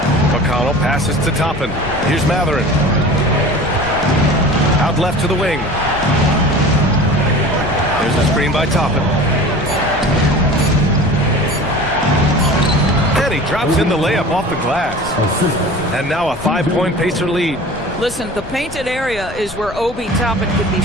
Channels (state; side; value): noise; left; rumble, 15 dB below the sound